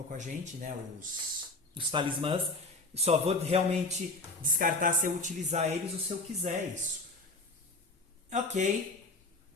com a gente, né? Os talismãs. Só vou realmente descartar se eu utilizar eles ou se eu quiser isso. Ok.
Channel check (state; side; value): quieter; right; 3.1 dB